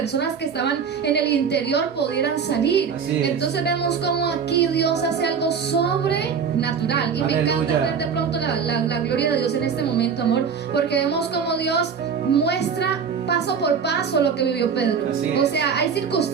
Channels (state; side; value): quieter; left; 6.5 dB